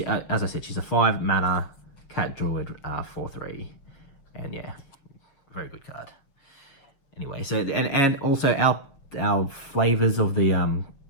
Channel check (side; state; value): right; late; 7.1 ms